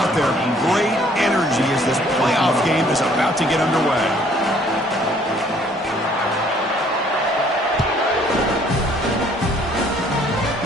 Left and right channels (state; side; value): normal; both; correlation 0.60